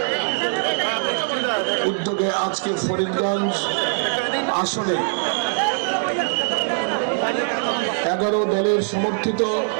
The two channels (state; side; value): silent; left; digital silence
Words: উদ্যোগে আজকে ফরিদগঞ্জ আসনে 11 দলের সমর্থিত